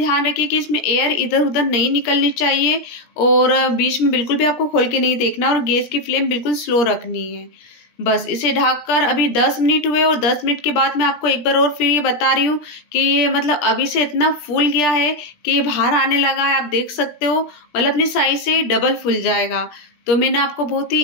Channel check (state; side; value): late; right; 17 ms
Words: रखिए कि इसमें एयर इधर उधर नहीं निकलनी चाहिए और बीच में बिल्कुल भी आपको खोल के नहीं देखना और गैस की फ्लेम बिल्कुल स्लो रखनी है। बस इसे ढककर अभी 10 मिनट हुए और 10 मिनट के बाद मैं आपको एक बार और फिर ये बता रही हूँ कि ये मतलब अभी से इतना फूल गया है कि ये बाहर आने लगा है। आप देख सकते हो मतलब अपनी साइज से डबल फूल जाएगा। तो मैंने आपको बहुत ही